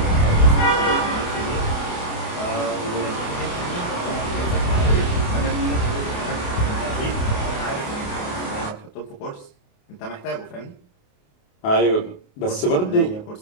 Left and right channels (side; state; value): right; late; 28 ms